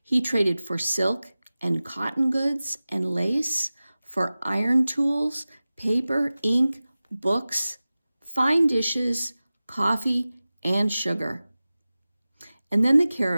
He traded for silk and cotton goods and lace, for iron tools, paper, ink, books, fine dishes, coffee, and sugar. And then the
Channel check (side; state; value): both; inverted; correlation -0.97